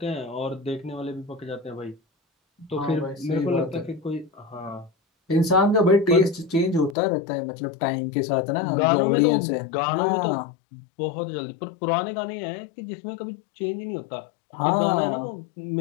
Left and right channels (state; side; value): drops out; right; at 7.0 s